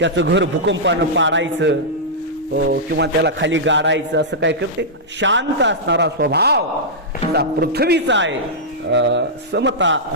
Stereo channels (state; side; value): normal; both; correlation -0.11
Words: घर भूकंपानं पाडायचं किंवा त्याला खाली गाडायचं, असं काय करते. शांत असणारा स्वभाव पृथ्वीचा आहे. समता